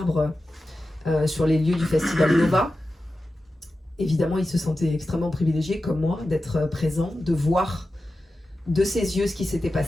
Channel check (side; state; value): both; normal; correlation 0.93